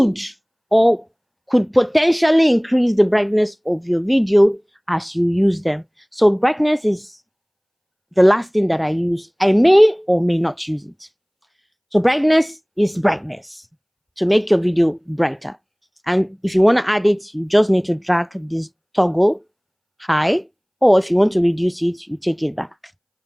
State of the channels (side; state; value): both; identical; correlation 1.00